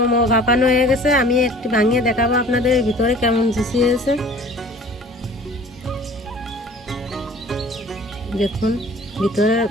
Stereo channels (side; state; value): both; normal; correlation 0.47